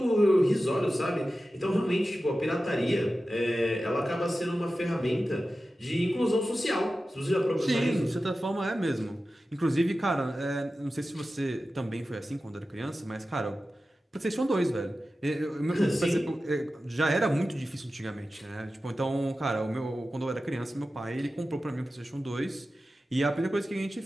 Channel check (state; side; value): normal; both; correlation 0.94